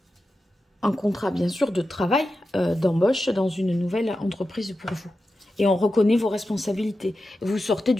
un contrat, bien sûr, de travail, d'embauche dans une nouvelle entreprise pour vous. Et on reconnaît vos responsabilités. Vous sortez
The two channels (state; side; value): normal; both; correlation 0.91